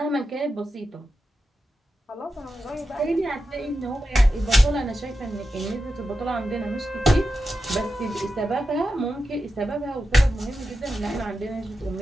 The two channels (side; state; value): both; normal; correlation 0.90